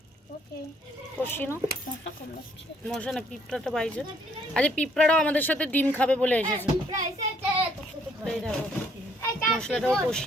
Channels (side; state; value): both; normal; correlation 0.66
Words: ওকে, কষিয়ে নাও। মশা না, পিঁপড়াটা বাইছে। আজকে পিঁপড়াটাও আমাদের সাথে ডিম খাবে বলে এসেছে। এই দেখো মশলাটাও